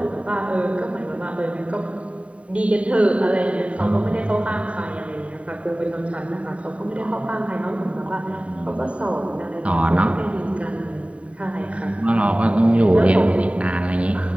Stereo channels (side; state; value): left; late; 0.064 ms